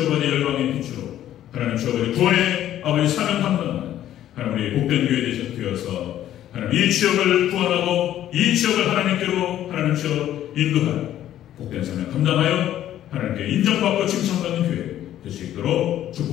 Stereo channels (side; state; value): right; quieter; 12.0 dB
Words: 열방의 빛으로 하나님 주여 구원의 아버지 사명 감당하는 하나님 우리 복된 교회 되어서 하나님 이 지역을 구원하고 이 지역을 하나님께로 하나님 주여 인도하는 복된 사명 감당하여 하나님께 인정받고 칭찬받는 교회 될 수 있도록